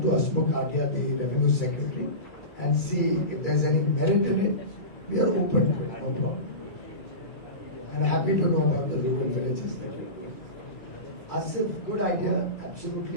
to Asmukh Adia, the Revenue Secretary, and see if there's any merit in it. We are open to it, no problem. And happy to know about the rural villages that you're doing. Asif, good idea,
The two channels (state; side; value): late; right; 2.3 ms